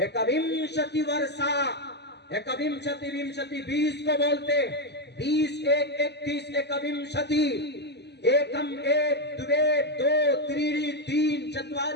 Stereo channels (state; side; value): late; right; 0.49 ms